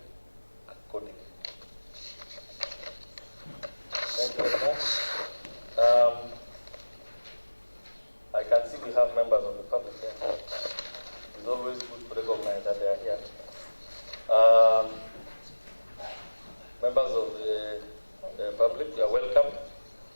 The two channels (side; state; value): both; inverted; correlation -1.00